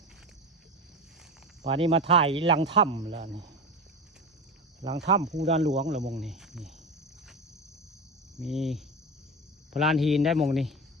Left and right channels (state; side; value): normal; both; correlation 0.23